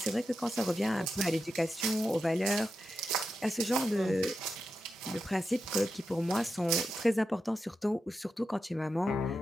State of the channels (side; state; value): both; normal; correlation 0.89